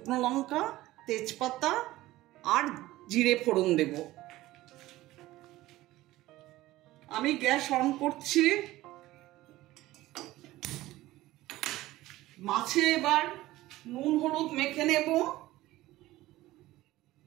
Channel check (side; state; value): left; quieter; 17.0 dB